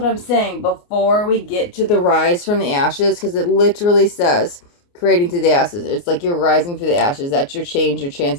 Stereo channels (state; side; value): late; right; 29 ms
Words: I'm saying. Before we get to the rise from the ashes, because it literally says creating through the ashes. It's like you're rising through the ashes. That's your change, your